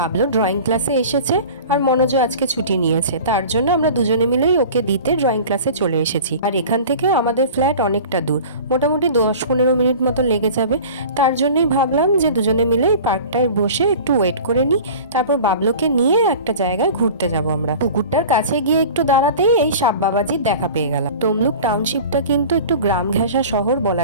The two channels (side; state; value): both; inverted; correlation -0.39